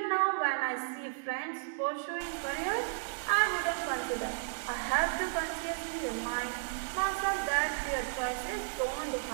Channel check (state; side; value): silent; left; digital silence